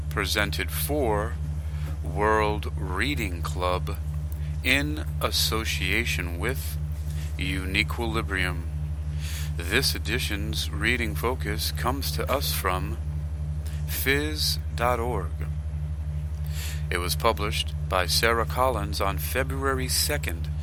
presented for World Reading Club in association with Uniquilibrium. This edition's reading focus comes to us from phys.org. It was published by Sarah Collins on February 2nd,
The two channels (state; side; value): identical; both; correlation 1.00